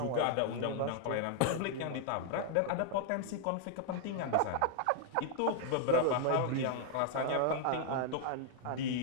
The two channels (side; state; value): both; different; correlation -0.01